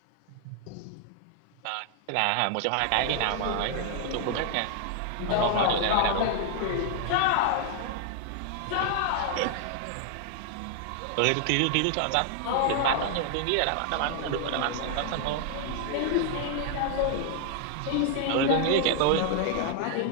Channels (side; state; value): both; different; correlation 0.00